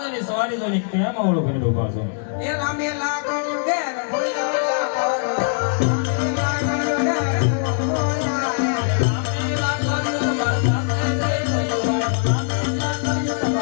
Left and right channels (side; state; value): right; silent; digital silence